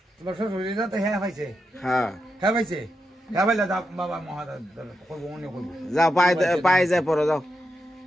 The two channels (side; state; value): both; normal; correlation 0.86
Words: তোমার শ্বশুর তো হ্যাঁ পাইছে? হ্যাঁ হ্যাঁ পাইছে। হ্যাঁ পাইলে যা বাবা মহাদা করবো অন্য করবো। যাও পাই যায় পড়ো, যাও